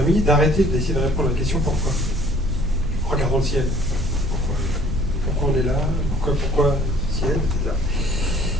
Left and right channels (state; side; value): noise; right; rumble, 6 dB below the sound